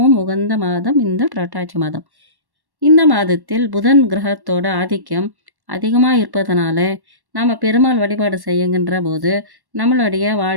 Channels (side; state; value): left; late; 1.1 ms